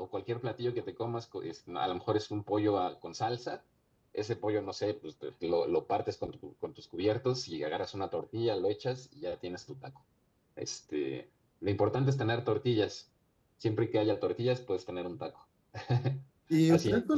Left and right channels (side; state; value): both; identical; correlation 1.00